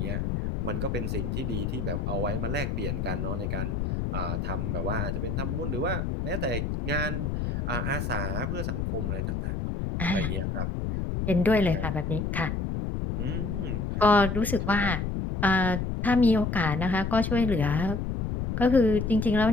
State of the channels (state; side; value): noise; left; rumble, 1 dB below the sound